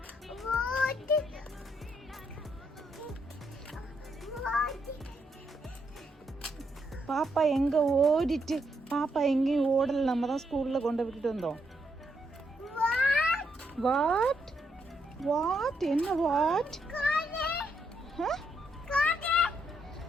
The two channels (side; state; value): both; normal; correlation 0.77